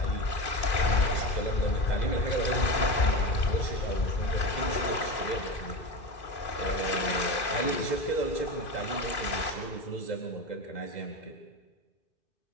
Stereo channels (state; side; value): late; right; 2.4 ms